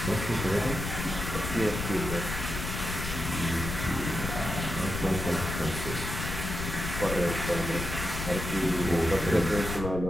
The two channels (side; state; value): left; noise; rumble, 5 dB below the sound